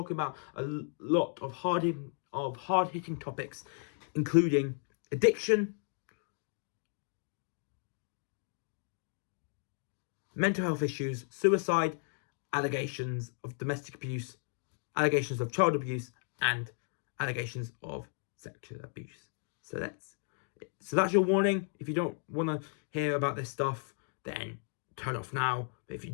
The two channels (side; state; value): right; silent; 55 dB below the other